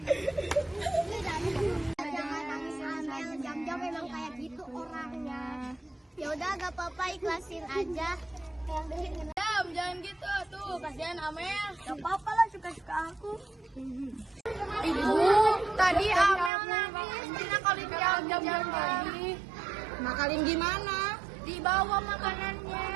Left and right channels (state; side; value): drops out; left; at 16.5 s